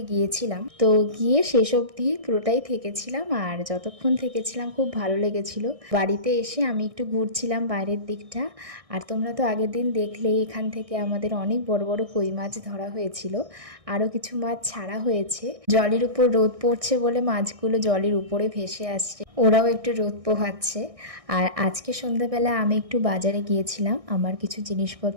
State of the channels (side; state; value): left; late; 1.6 ms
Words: গিয়েছিলাম, তো গিয়ে শেষ অবধি পুরোটাই থেকেছিলাম। আর যতক্ষণ থেকেছিলাম খুব ভালো লেগেছিল। বাড়িতে এসে আমি একটু ঘুরছিলাম বাইরের দিকটা। আর তোমরা তো আগের দিন দেখলেই এখান থেকে আমাদের অনেক বড় বড় কই মাছ ধরা হয়েছিল, আরও কিছু মাছ ছাড়া হয়েছে। জলের উপর রোদ পড়ছে বলে মাছগুলো জলের উপরে ভেসে আসছে, ওরাও একটু রোদ পোহাচ্ছে। আর আজকে সন্ধ্যাবেলা আমি একটু বাজারে গিয়েছিলাম, আমার কিছু